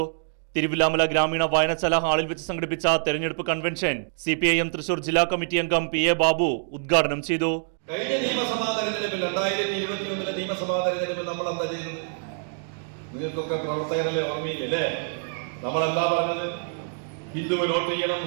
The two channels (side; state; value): left; silent; digital silence